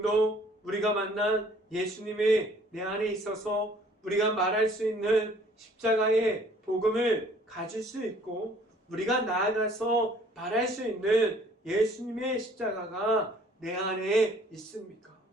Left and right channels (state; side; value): normal; both; correlation 0.57